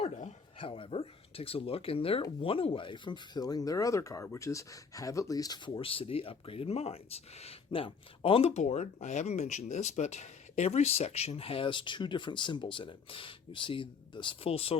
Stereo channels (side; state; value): right; quieter; 5.6 dB